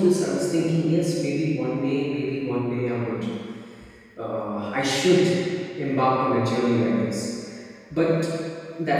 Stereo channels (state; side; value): identical; both; correlation 1.00